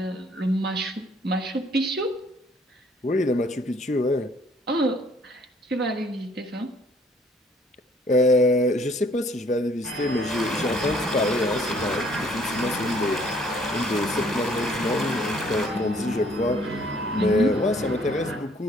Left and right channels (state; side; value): normal; both; correlation 0.61